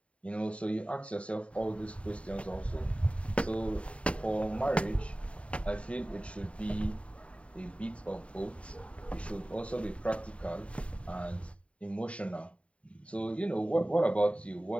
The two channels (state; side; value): late; right; 0.062 ms